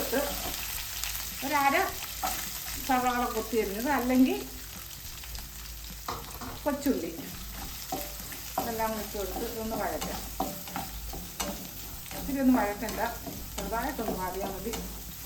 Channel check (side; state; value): both; identical; correlation 1.00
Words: 1/2 സവാള കൊത്തി അരിഞ്ഞത്, അല്ലെങ്കിൽ കൊച്ചുള്ളി, ഇതെല്ലാം ഇട്ട് കൊടുത്ത് ഇതൊന്ന് വഴറ്റാം. ഇത്തിരി ഒന്ന് വഴറ്റണ്ട, ചെറുതായിട്ടൊന്ന് വാടിയാൽ